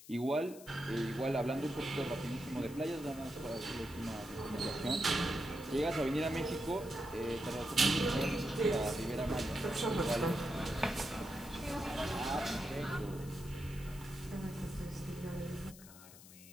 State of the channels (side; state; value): left; noise; hiss, 18 dB below the sound